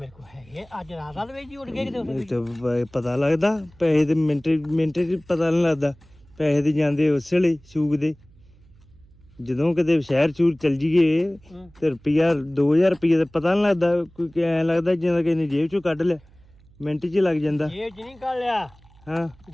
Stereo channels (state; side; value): noise; right; hum, 27 dB below the sound